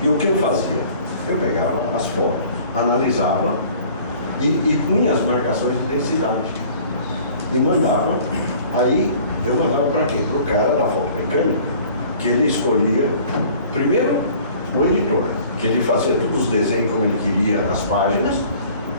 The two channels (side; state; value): both; inverted; correlation -0.50